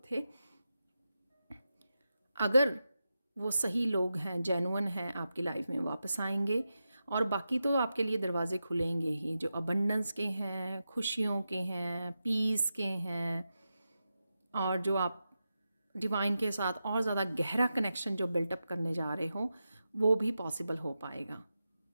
थे, अगर वो सही लोग हैं, जेन्युइन हैं, आपकी लाइफ में वापस आएंगे। और बाकी तो आपके लिए दरवाजे खुलेंगे ही, जो अबंडेंस के हैं, खुशियों के हैं, पीस के हैं, और जो आप डिवाइन के साथ और ज़्यादा गहरा कनेक्शन जो बिल्टअप करने जा रहे हो, वो भी पॉसिबल हो पाएगा।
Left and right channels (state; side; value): inverted; both; correlation -0.90